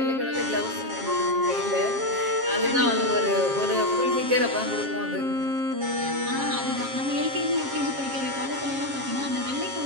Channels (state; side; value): late; left; 7.4 ms